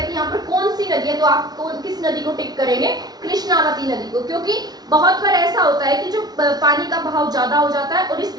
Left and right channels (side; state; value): left; late; 0.19 ms